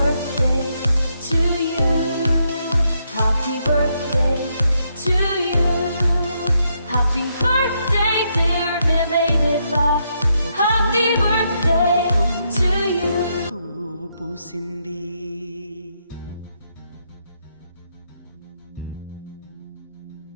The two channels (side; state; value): both; inverted; correlation -0.78